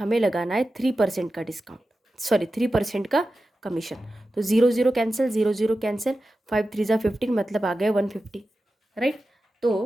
लगाना है 3% का डिस्काउंट, सॉरी 3% का कमीशन। तो 0 कैंसिल, 0 कैंसिल, 5 3 ज़ा 15, मतलब आ गया 150, राइट।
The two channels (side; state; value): both; normal; correlation 0.93